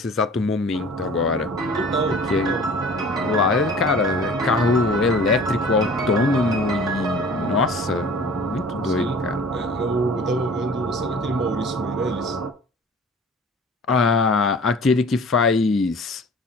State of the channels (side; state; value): both; normal; correlation 0.45